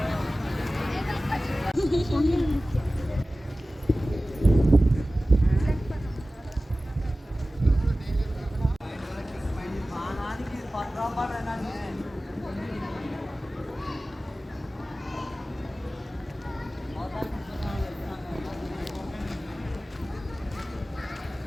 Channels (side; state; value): both; normal; correlation 0.96